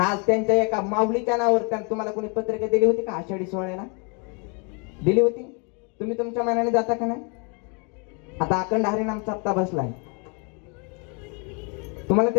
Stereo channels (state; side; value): quieter; right; 35.1 dB